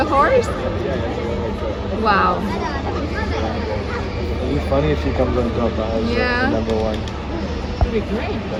horse? Wow. It'd be funny if she comes on top as Yeah. number one. That'd be great.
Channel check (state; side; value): identical; both; correlation 1.00